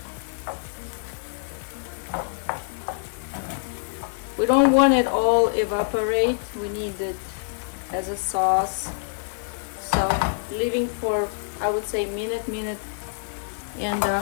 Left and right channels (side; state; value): right; silent; digital silence